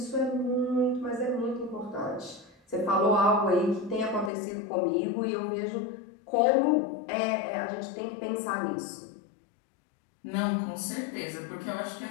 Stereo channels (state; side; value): drops out; right; at 4.3 s